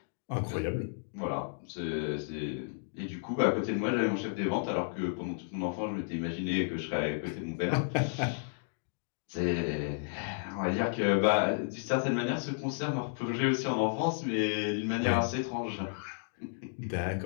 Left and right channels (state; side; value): silent; right; digital silence